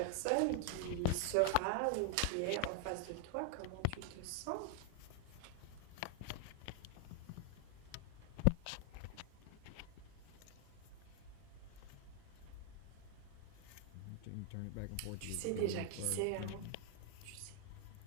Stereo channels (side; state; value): both; different; correlation 0.00